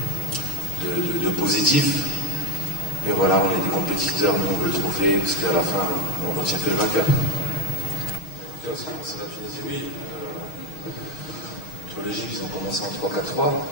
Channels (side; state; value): right; late; 6.4 ms